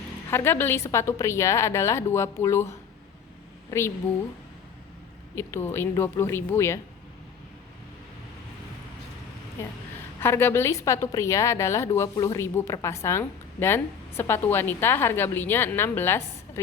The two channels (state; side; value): quieter; right; 6.8 dB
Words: Harga beli sepatu pria adalah 20.000. Ini 20.000 ya. Harga beli sepatu pria adalah 20.000 per pasang, dan sepatu wanita harga belinya